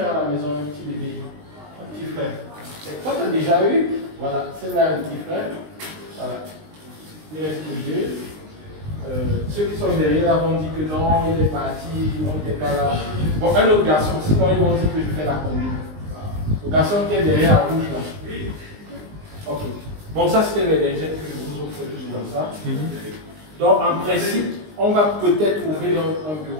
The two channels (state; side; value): late; left; 19 ms